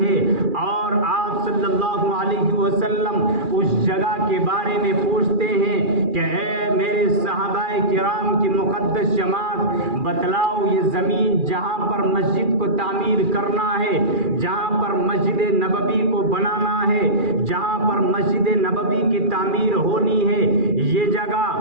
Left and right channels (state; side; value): late; left; 2.4 ms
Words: اور آپ صلی اللہ علیہ وسلم اس جگہ کے بارے میں پوچھتے ہیں کہ اے میرے صحابہ کرام کی مقدس جماعت، بتلاؤ یہ زمین جہاں پر مسجد کو تعمیر کرنا ہے، جہاں پر مسجد نبوی کو بنانا ہے، جہاں پر مسجد نبوی کی تعمیر ہونی ہے، یہ جگہ